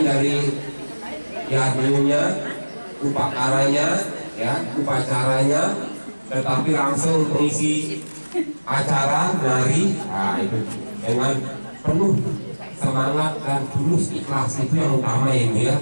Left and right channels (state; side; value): inverted; both; correlation -1.00